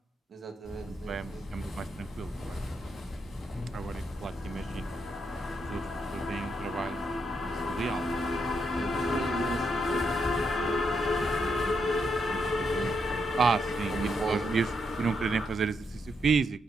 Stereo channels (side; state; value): both; normal; correlation 0.80